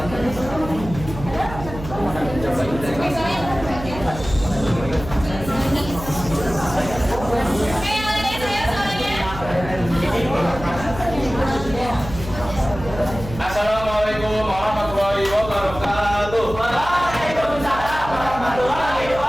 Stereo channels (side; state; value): right; noise; hum, 11 dB below the sound